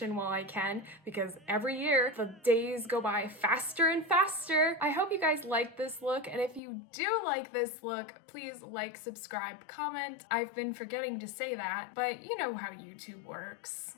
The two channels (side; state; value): right; drops out; at 6.6 s